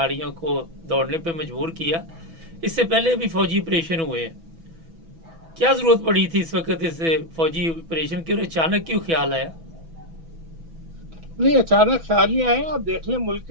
को दौड़ने पे मजबूर किया। इससे पहले भी फौजी ऑपरेशन हुए हैं। क्या जरूरत पड़ी थी इस वक्त इस फौजी ऑपरेशन की और अचानक क्यों ख्याल आया? नहीं, अचानक ख्याल नहीं आए। आप देख लें मुल्क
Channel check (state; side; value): late; left; 6.1 ms